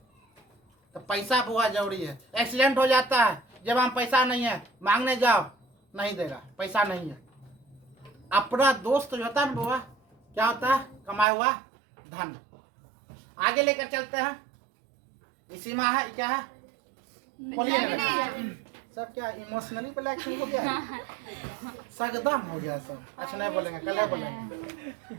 तो पैसा बुआ जरूरी है। एक्सीडेंट हो जाता है, जब हम पैसा नहीं है मांगने जाओ नहीं देगा, पैसा नहीं है। अपना दोस्त जो होता है ना बुआ, क्या होता है? कमाया हुआ धन। आगे लेकर चलते हैं। इसी में है क्या है? बोलिए ना सब। क्या इमोशनली ब्लैकमेल हो गया, सगदम हो गया सब। अच्छा नहीं बोलेंगे, कल बोलेंगे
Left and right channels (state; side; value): drops out; left; at 11.2 s